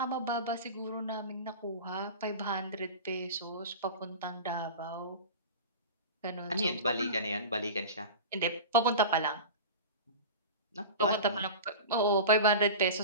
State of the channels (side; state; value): both; inverted; correlation -0.31